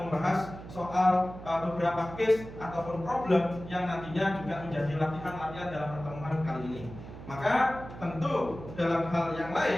soal beberapa case ataupun problem yang nantinya juga menjadi latihan-latihan dalam pertemuan kali ini. Maka tentu dalam hal yang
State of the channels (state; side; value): noise; right; hum, 13 dB below the sound